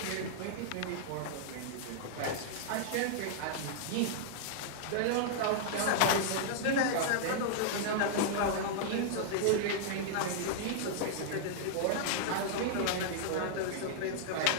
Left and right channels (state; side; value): different; both; correlation -0.01